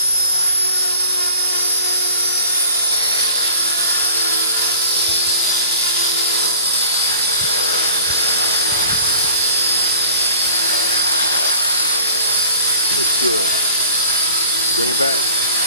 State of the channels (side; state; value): both; inverted; correlation -0.46